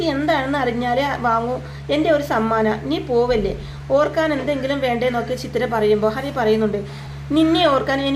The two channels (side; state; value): both; identical; correlation 1.00